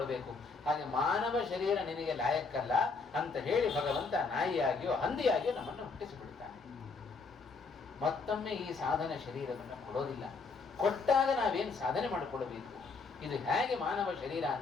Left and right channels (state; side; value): quieter; right; 4.4 dB